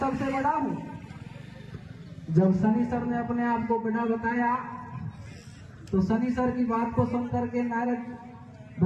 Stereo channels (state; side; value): identical; both; correlation 1.00